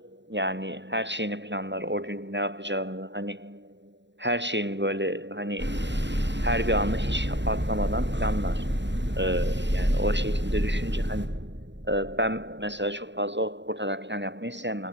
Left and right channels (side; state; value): left; late; 0.52 ms